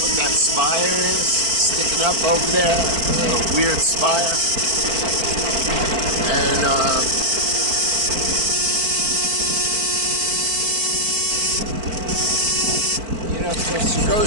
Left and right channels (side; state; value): left; late; 4.5 ms